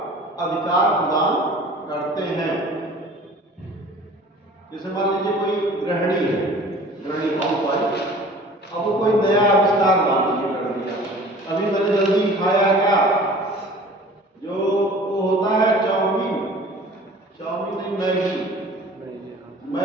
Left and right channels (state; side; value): normal; both; correlation 0.45